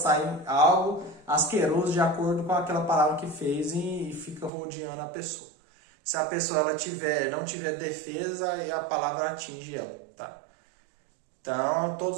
algo asqueroso de acordo com aquela palavra que fez e fica rodeando a pessoa. Se a pessoa ela não tiver defesa, aí a palavra atinge ela, tá? Então,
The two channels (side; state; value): left; drops out; at 4.5 s